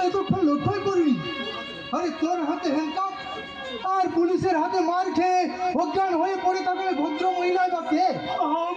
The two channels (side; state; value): both; identical; correlation 1.00